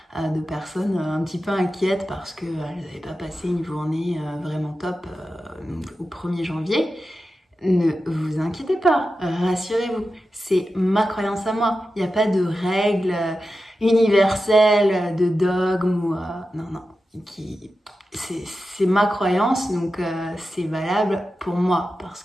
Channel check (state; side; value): normal; both; correlation 0.92